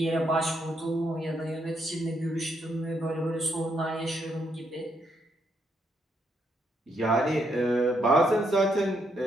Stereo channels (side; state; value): both; normal; correlation 0.76